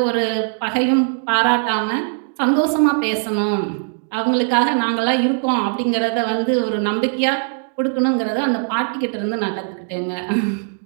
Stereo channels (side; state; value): left; silent; digital silence